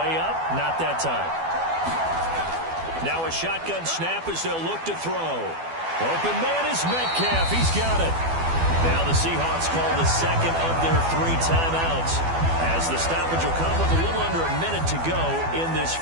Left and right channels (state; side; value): late; left; 12 ms